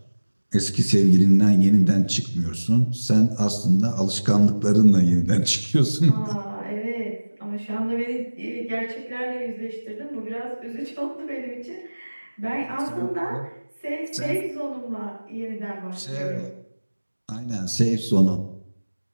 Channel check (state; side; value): inverted; both; correlation -1.00